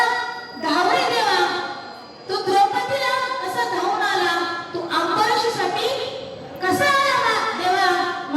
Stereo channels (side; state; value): both; identical; correlation 1.00